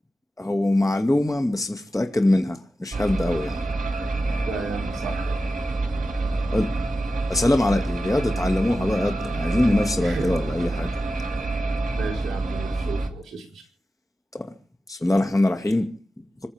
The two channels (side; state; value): both; normal; correlation 0.93